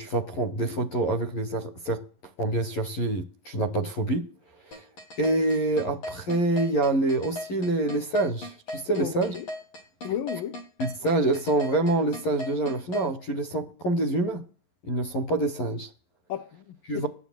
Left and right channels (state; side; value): late; right; 11 ms